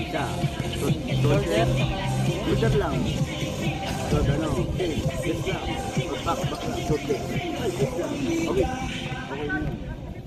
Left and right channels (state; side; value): identical; both; correlation 1.00